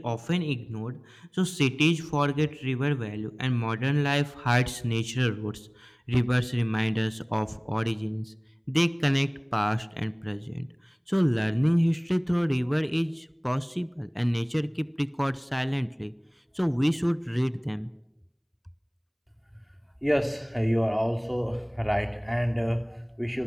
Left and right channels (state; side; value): identical; both; correlation 1.00